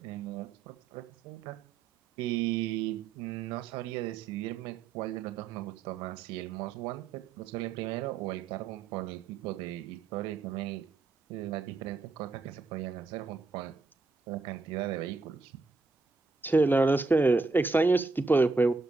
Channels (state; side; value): quieter; left; 4.1 dB